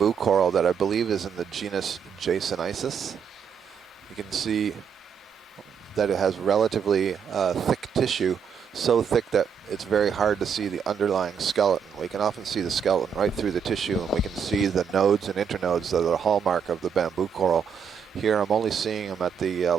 coral that I believe is in the genus Jasonisis. You can see that it has relatively thick tissue, so thick that it's very hard to see the underlying skeleton. We can often see the skeleton right through the tissue, and we can see the nodes and internodes that are the hallmark of the bamboo coral. Here I'm only seeing them at the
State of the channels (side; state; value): left; quieter; 7.0 dB